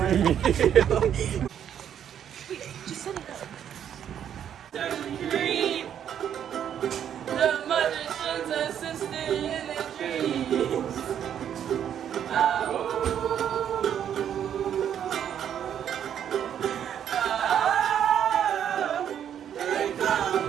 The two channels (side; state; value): left; quieter; 9.4 dB